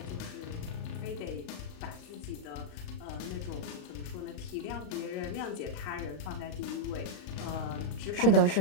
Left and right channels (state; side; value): late; right; 35 ms